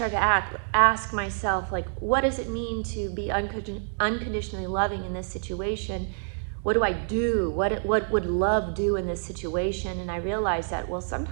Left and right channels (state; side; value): silent; left; digital silence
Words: to ask myself, like, what does it mean to be unconditionally loving in this situation? What do I do? What would love do in this situation? And I realized that, well,